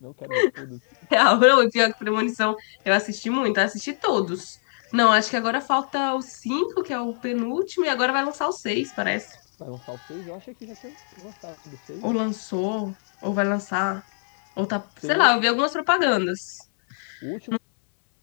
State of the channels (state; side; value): silent; right; digital silence